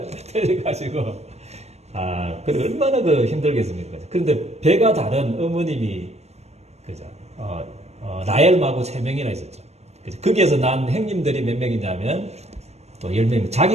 틀려가지고 그래 얼마나 힘들겠습니까? 그런데 배가 다른 어머님이 그죠? 라헬하고 3명이나 있었죠. 그죠? 거기에서 난 행님들이 몇 명이냐면 또 10명.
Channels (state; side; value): late; left; 0.31 ms